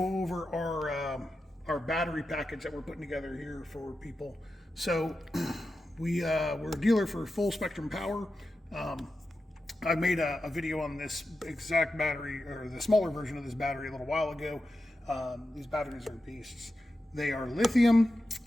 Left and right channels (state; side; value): normal; both; correlation 0.90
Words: over our battery package that we're putting together here for people. So we're a dealer for full spectrum power. I made a video on this exact battery, or the smaller version of this battery, a little while ago. These batteries are beasts. They are lithium.